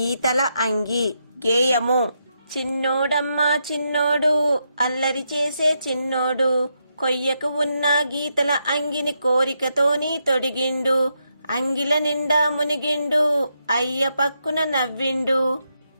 అంగి. గేయము. చిన్నోడమ్మా చిన్నోడు, అల్లరి చేసే చిన్నోడు, కొయ్యకు ఉన్న గీతల అంగిని కోరికతోని తొడిగిండు, అంగిల నిండా మునిగిండు, అయ్య పక్కున నవ్విండు.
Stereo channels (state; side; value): inverted; both; correlation -0.81